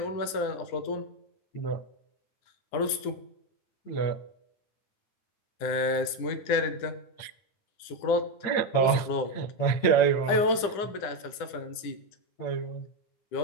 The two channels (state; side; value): late; right; 9.9 ms